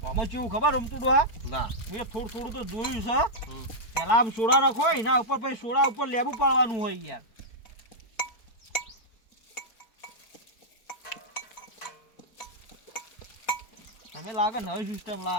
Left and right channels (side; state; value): right; late; 4.5 ms